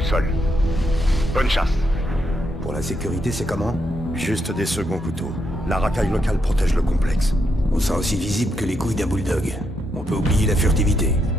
seul. Bonne chasse. Pour la sécurité, c'est comment? Juste des seconds couteaux. La racaille locale protège le complexe. On sera aussi visible que les couilles d'un bulldog. On peut oublier la furtivité.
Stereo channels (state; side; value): normal; both; correlation 0.80